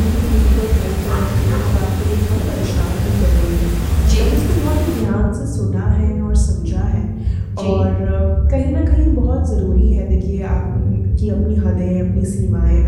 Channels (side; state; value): both; identical; correlation 1.00